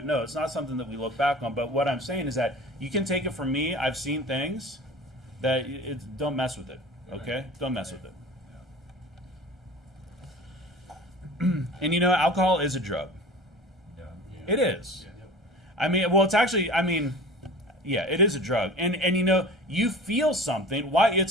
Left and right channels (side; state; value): both; normal; correlation 0.38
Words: No, it's not something that we look back on. But what I'm saying is that you can take it from me. I've seen things that don't mess with it. Okay? Don't mess with it. And alcohol is a drug. It is. I mean, well, it's actually, yeah, it is a drug. And you feel something. Why?